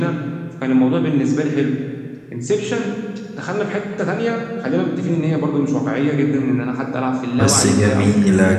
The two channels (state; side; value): identical; both; correlation 1.00